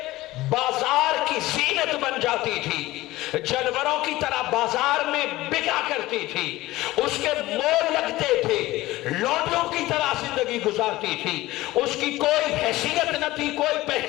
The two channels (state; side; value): quieter; right; 17.8 dB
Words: بازار کی زینت بن جاتی تھی، جانوروں کی طرح بازار میں بکا کرتی تھی، اس کے مول لگتے تھے، لوٹوں کی طرح زندگی گزارتی تھی، اس کی کوئی حیثیت نہ تھی، کوئی